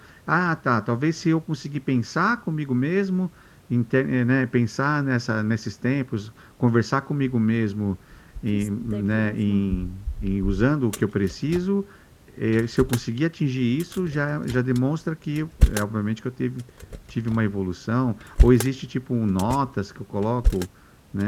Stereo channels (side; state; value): both; identical; correlation 1.00